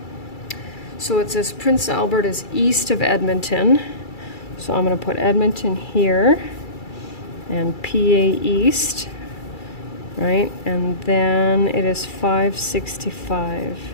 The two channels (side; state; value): right; late; 2.3 ms